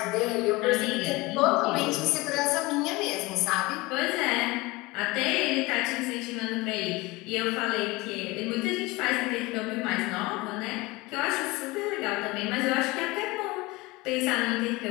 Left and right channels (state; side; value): quieter; right; 22.2 dB